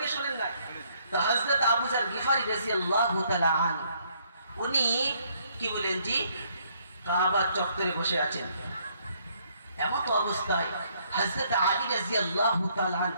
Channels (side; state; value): both; inverted; correlation -0.68